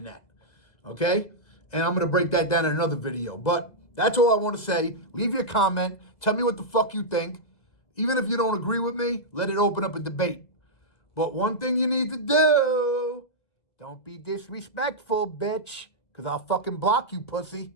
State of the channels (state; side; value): late; right; 2.0 ms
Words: that. Okay? And I'm going to break that down in another video. But that's all I want to say. Leave your comment. Tell me what the fuck you think. Even if you don't agree with me, let it open up a debate. But one thing you need to do, don't be disrespectful, bitch. Because I'll fucking block you, pussy.